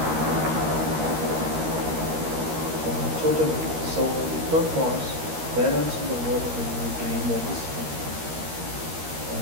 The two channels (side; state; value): left; late; 13 ms